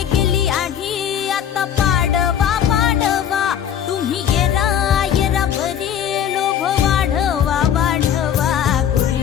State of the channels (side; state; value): right; quieter; 9.5 dB